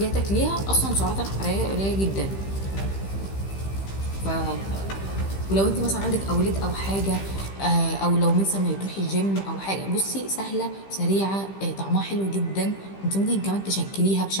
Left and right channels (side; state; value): right; late; 15 ms